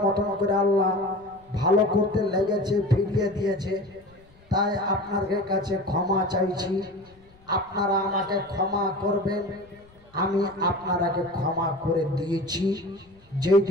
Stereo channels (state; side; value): noise; left; rumble, 28 dB below the sound